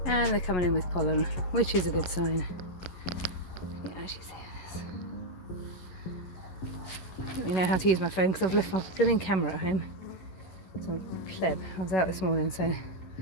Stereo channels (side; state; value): right; late; 11 ms